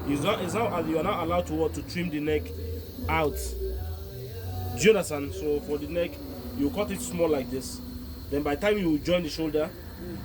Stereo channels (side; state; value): both; identical; correlation 1.00